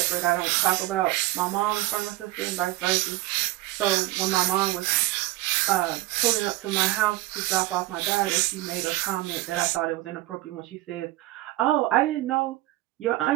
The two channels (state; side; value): quieter; left; 17.9 dB